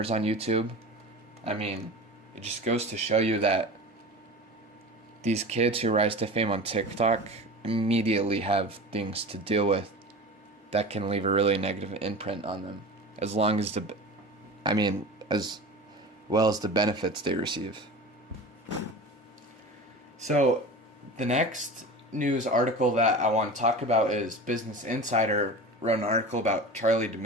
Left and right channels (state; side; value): normal; both; correlation 0.33